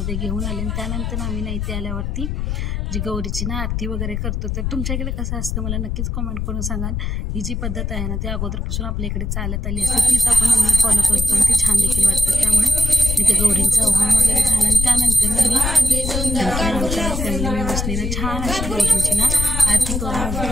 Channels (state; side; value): noise; left; rumble, 2 dB below the sound